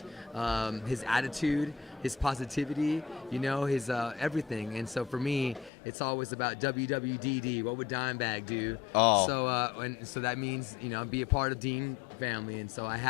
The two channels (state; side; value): drops out; right; at 5.7 s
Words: his attitude, his positivity, his everything. And so for me, it's always about WWDD. What would Dimebag do? Oh. So that means, be a part of Dean family. And so I